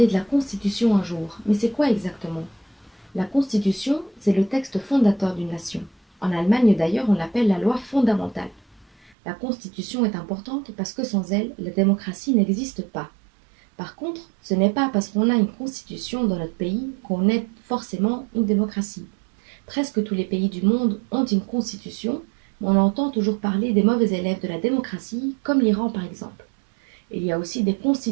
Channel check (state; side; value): drops out; left; at 9.2 s